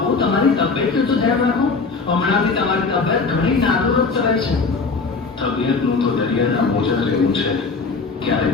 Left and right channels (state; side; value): quieter; right; 4.4 dB